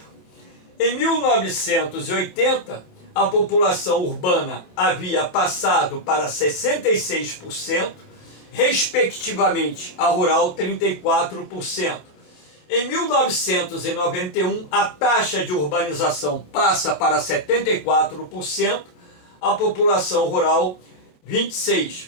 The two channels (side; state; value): right; late; 27 ms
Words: Em 1980, a população urbana havia passado para 66%, respectivamente a rural 34%. Em 1991, a taxa de urbanização passa para 74%, a população rural